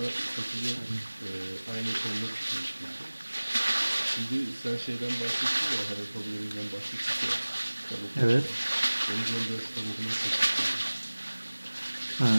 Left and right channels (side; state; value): both; inverted; correlation -1.00